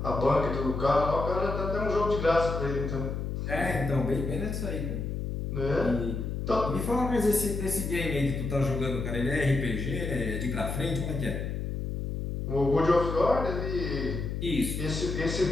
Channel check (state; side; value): noise; left; hum, 3 dB below the sound